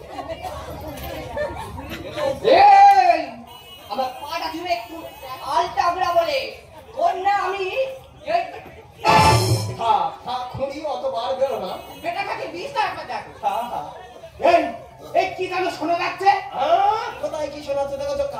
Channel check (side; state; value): both; identical; correlation 1.00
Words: আমার পাটা তুমি একটু আলটা বলা বলে ওর না আমি খুনি অতবার বেরো না। বেটাকে 20 টাকা দেখো। এই কি জানো শোনা যাচ্ছে? কোথায় কি শোনাচ্ছে দেখো তো,